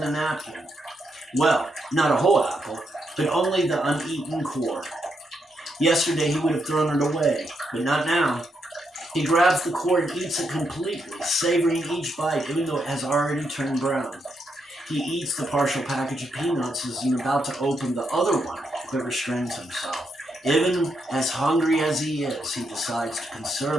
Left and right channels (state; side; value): normal; both; correlation 0.80